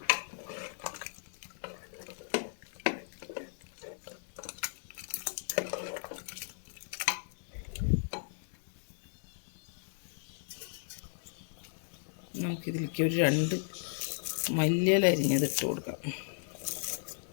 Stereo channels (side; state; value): right; silent; digital silence